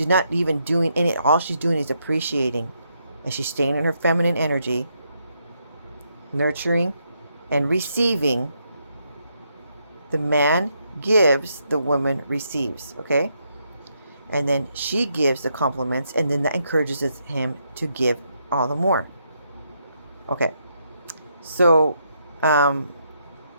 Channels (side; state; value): both; inverted; correlation -0.78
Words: not even doing any, all she's doing is appreciating, and she's staying in her feminine energy, nurturing and receiving. The man gives, the woman receives. Okay? And then she gives the compliments, and then that encourages him to give all the more. Okay, so let